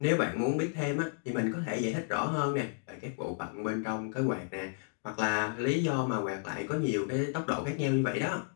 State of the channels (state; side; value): silent; right; digital silence